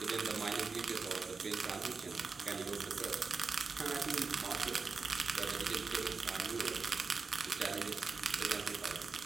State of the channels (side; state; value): left; quieter; 4.6 dB